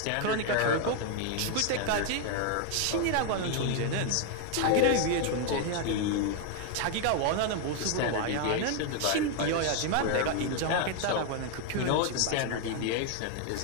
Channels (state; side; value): different; both; correlation 0.01